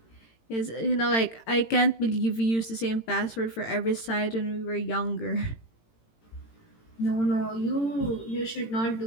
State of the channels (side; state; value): right; late; 18 ms